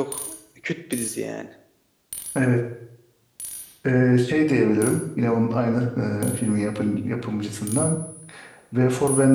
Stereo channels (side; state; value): both; identical; correlation 1.00